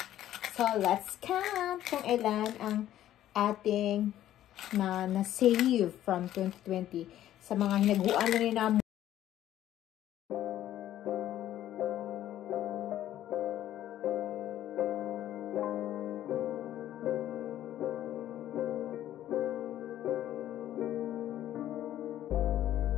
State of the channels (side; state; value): right; quieter; 12.5 dB